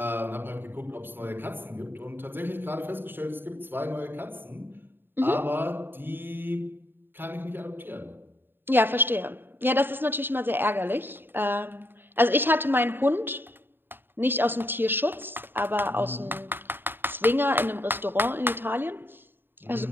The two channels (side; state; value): left; late; 0.098 ms